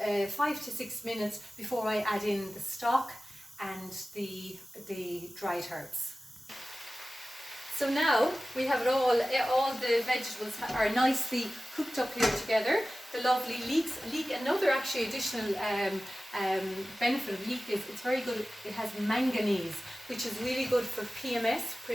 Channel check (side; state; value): both; normal; correlation 0.96